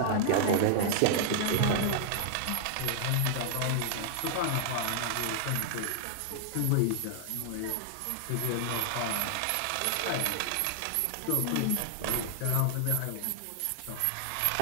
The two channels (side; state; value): both; different; correlation -0.01